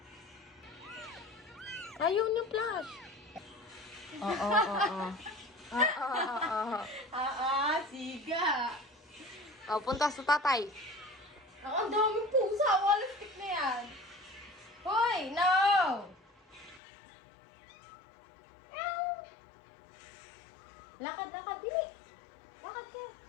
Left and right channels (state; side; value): drops out; right; at 16.8 s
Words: Ayaw nyo flash. Oo. Siga. Oh, punta sa tatay. Ang daming pusa. Walang stick na yan. Hoy, no! Lakad, bili. Lakad ka.